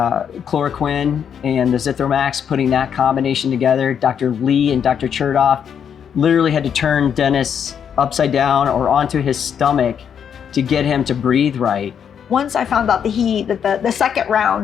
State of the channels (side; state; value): right; quieter; 8.0 dB